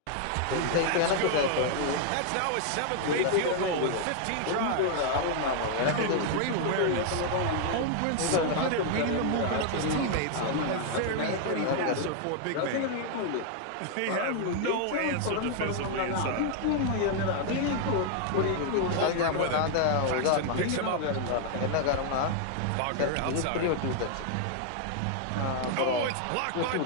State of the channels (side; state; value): both; different; correlation 0.00